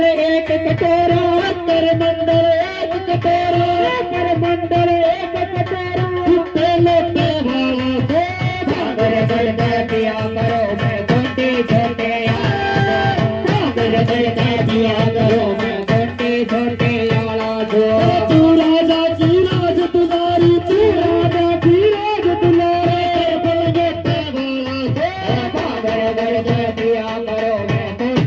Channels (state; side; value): identical; both; correlation 1.00